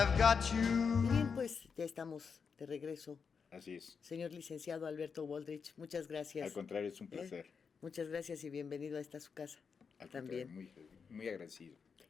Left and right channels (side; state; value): right; quieter; 5.8 dB